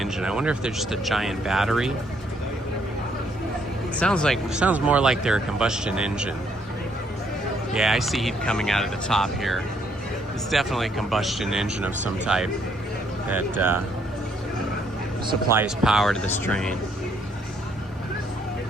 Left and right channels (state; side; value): normal; both; correlation 0.70